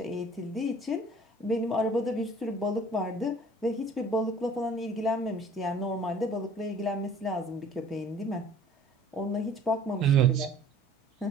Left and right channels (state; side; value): normal; both; correlation 0.52